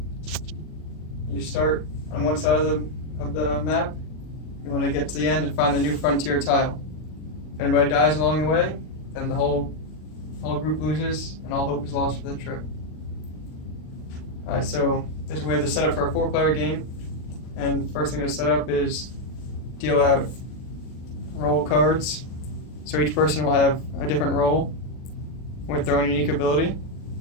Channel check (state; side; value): late; right; 39 ms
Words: You start on one side of the map. You want to get to the end and find the New Frontier tile. If anybody dies along the way, then the whole group loses and all hope is lost for the trip. Alright, so this is a way to set up for a 4-player game. And first thing to set up is deal out role cards. So each person will have a different role with their own unique ability.